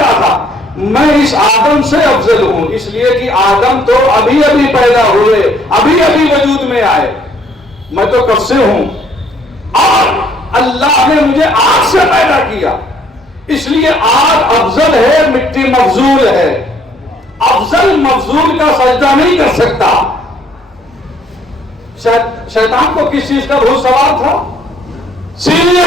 تھا؟ میں اس آدم سے افضل ہوں، اس لیے کہ آدم تو ابھی ابھی پیدا ہوئے، ابھی ابھی وجود میں آئے، میں تو کب سے ہوں، اور اللہ نے مجھے آگ سے پیدا کیا، اس لیے آگ افضل ہے، مٹی مفضول ہے، افضل مفضول کا سجدہ نہیں کر سکتا۔ شیطان کو کس چیز کا بھوت سوال تھا؟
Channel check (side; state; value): both; normal; correlation 0.63